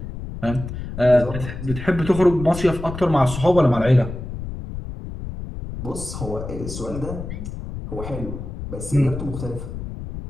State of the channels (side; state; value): left; noise; rumble, 8 dB below the sound